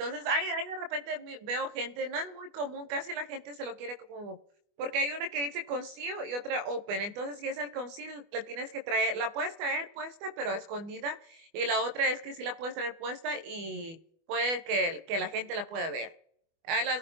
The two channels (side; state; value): left; late; 24 ms